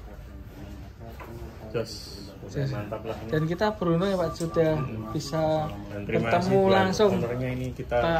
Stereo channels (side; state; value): both; identical; correlation 1.00